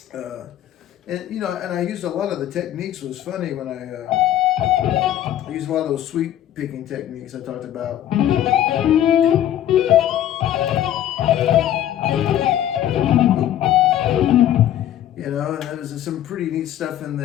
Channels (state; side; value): quieter; right; 11.7 dB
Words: And I used a lot of the techniques. It was funny when I used a lot of those sweep picking techniques I talked about. And there's some pretty neat stuff in